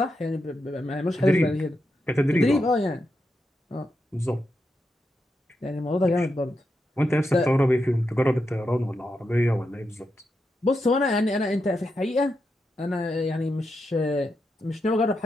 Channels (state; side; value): normal; both; correlation 0.86